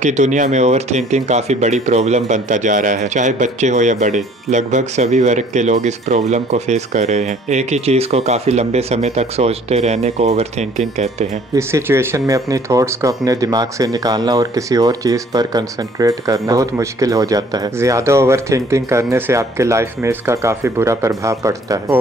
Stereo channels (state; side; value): normal; both; correlation 0.56